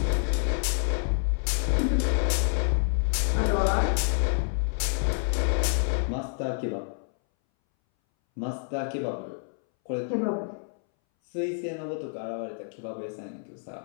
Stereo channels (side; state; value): right; silent; 59 dB below the other